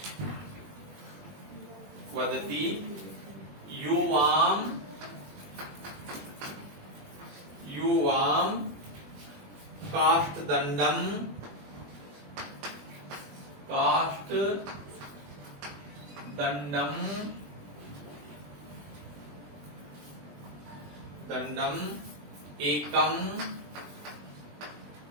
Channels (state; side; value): late; left; 20 ms